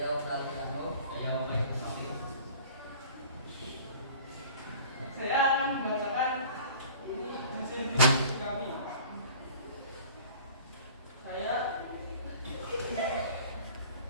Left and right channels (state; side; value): inverted; both; correlation -0.45